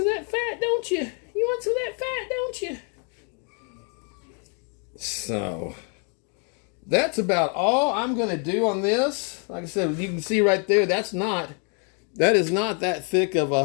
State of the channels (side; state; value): right; quieter; 39.3 dB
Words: of that fat, don't you? You want some of that fat, don't you? So, that's about all I'm going to do on this. Like I said, you can see right there, that is not that thick of